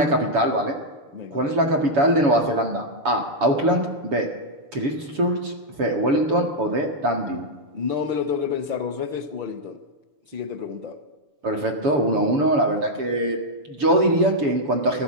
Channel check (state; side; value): late; left; 7.2 ms